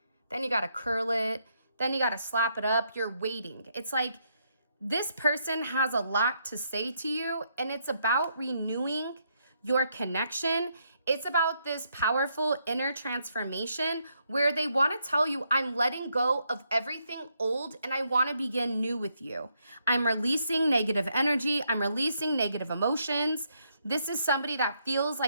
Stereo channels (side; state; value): both; inverted; correlation -0.76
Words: Then you got to curl it. Then you got to slap it up. You're waiting. It's like this person has a lot to say to you, and it's about renewing your connection. It's about this powerful inner transformation where they want to tell you, I'm letting go of everything old and I want to begin new with you. I'm releasing negative energy. I'm releasing negative emotions. This is somebody that feels